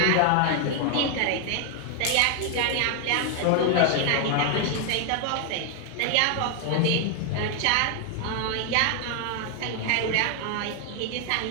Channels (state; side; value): different; both; correlation 0.00